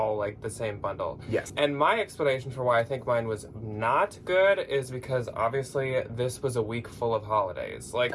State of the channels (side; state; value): both; identical; correlation 1.00